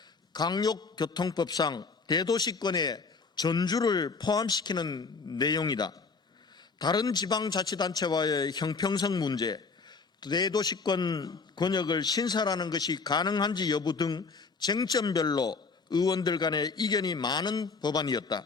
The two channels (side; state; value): right; quieter; 4.6 dB